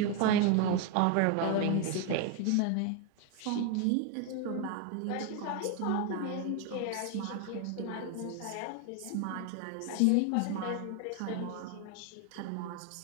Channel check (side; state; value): both; different; correlation 0.01